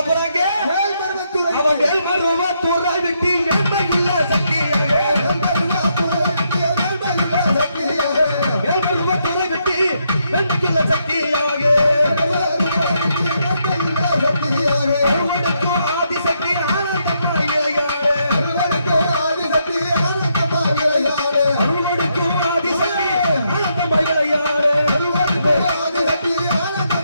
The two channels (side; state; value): both; inverted; correlation -0.77